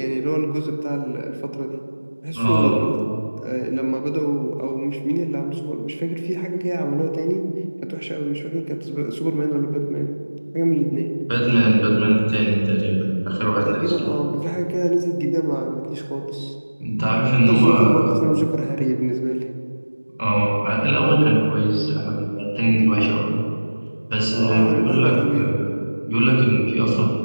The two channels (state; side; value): inverted; both; correlation -1.00